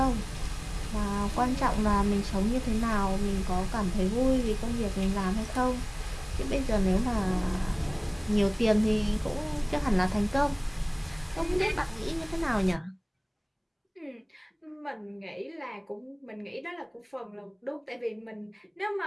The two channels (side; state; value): both; identical; correlation 1.00